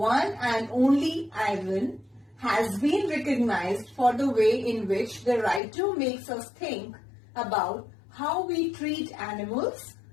and Only Ivan, has been recognized for the way in which the writer makes us think about how we treat animals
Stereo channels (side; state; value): right; drops out; at 5.6 s